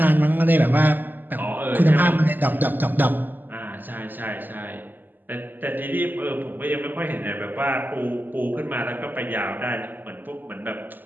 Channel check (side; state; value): left; late; 0.089 ms